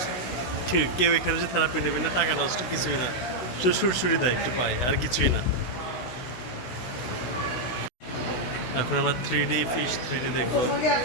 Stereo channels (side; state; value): right; late; 16 ms